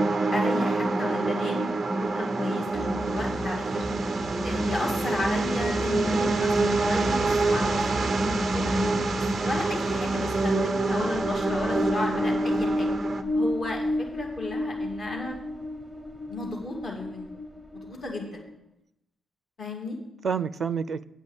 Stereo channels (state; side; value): normal; both; correlation 0.88